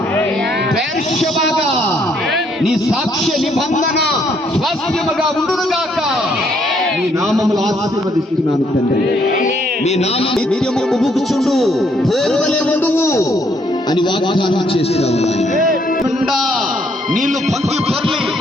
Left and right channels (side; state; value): both; normal; correlation 0.69